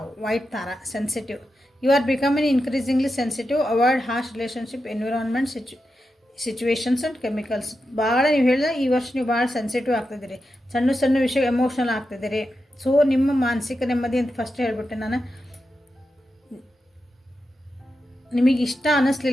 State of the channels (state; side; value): normal; both; correlation 0.89